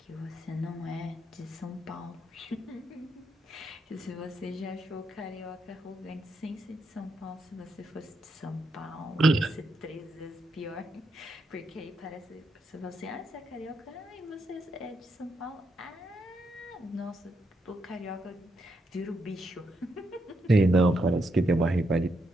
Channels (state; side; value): normal; both; correlation 0.80